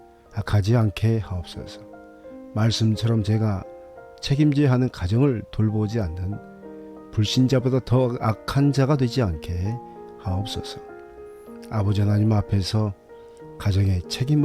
악하지 않게 하옵소서. 말씀처럼 제가 책임져야 하는 가정을 돌보지 않는 불신자보다 더 악한 자가 되지 않게 하옵소서. 아버지 하나님 앞에서 가정의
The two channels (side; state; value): both; identical; correlation 1.00